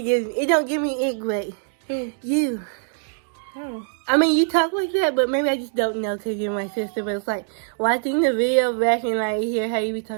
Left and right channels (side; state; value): left; silent; digital silence